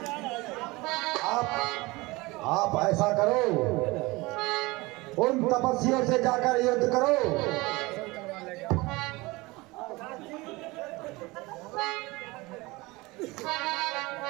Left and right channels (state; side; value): quieter; left; 22.6 dB